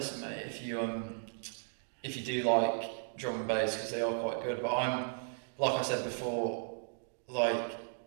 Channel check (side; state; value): left; silent; digital silence